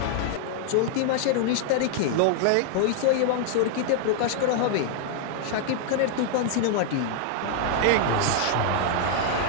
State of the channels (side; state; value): both; different; correlation -0.01